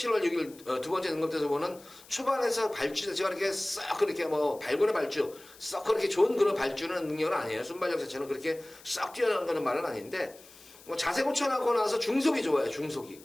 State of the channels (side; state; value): left; noise; hiss, 22 dB below the sound